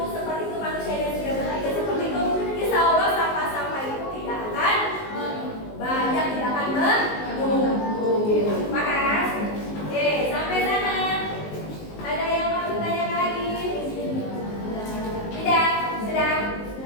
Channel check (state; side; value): late; right; 19 ms